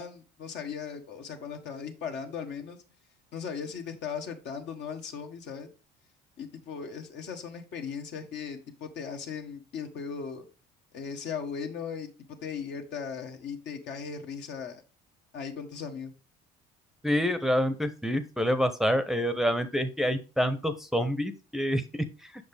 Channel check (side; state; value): both; normal; correlation 0.75